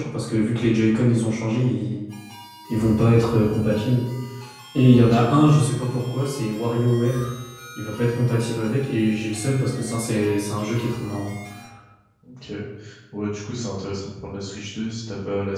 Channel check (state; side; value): identical; both; correlation 1.00